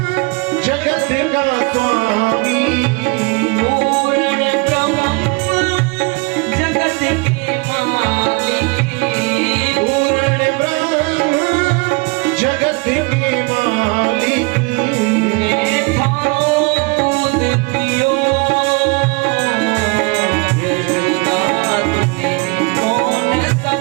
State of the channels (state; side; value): quieter; left; 28.5 dB